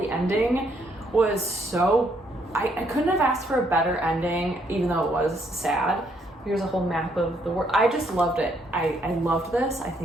ending was so, I couldn't have asked for a better ending, even though it was sad. Here's a whole map of the world. I just loved it. I loved this. I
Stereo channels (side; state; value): both; normal; correlation 0.71